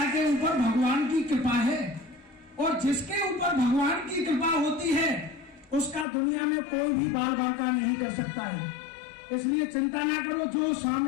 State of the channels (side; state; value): right; drops out; at 6.1 s